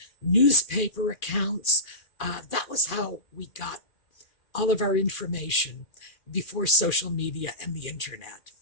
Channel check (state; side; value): late; right; 2.4 ms